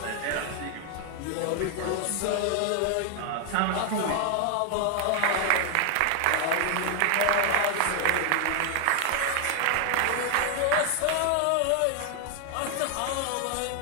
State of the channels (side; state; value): both; different; correlation 0.00